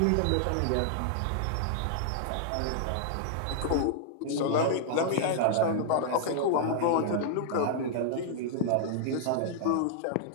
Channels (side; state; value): both; different; correlation -0.01